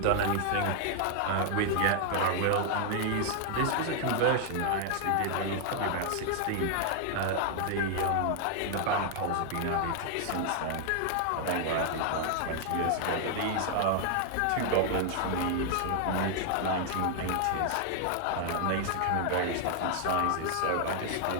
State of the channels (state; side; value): different; both; correlation 0.00